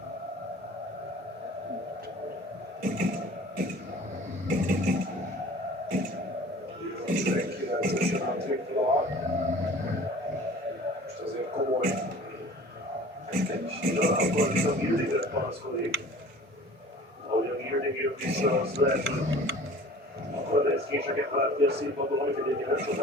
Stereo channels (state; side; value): normal; both; correlation 0.45